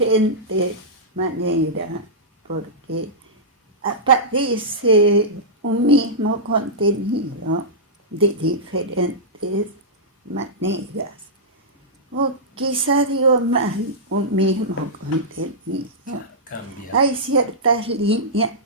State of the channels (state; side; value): normal; both; correlation -0.13